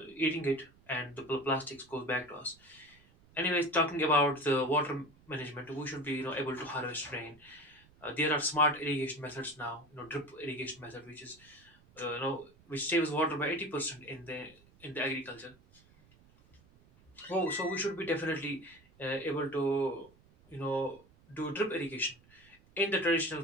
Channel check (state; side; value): noise; right; rumble, 28 dB below the sound